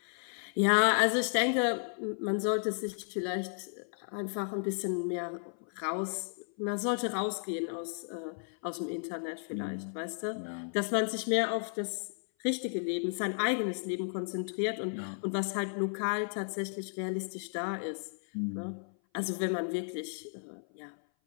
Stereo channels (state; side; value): silent; right; 55 dB below the other